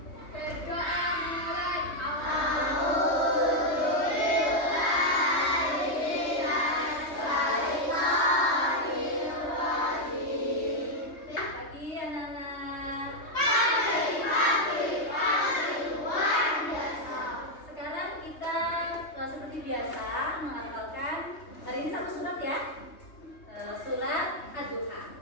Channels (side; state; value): right; late; 3.2 ms